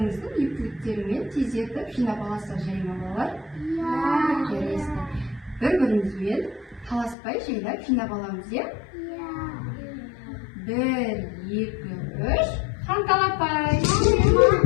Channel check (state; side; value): drops out; right; at 7.2 s